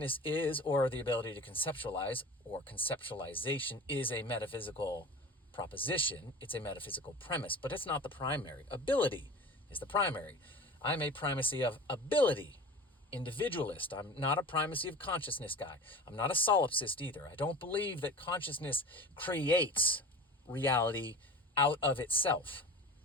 is, or the ability to conceptualize, or conceptualization, is a metaphysical proposition. It's a metaphysical premise, but it's not the primary. Ability is the primary. I'm a primacy of ability individualist. I'm not a primacy of consciousness guy. I'm not a solipsist either. I don't believe that consciousness creates reality out of itself.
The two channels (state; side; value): normal; both; correlation 0.36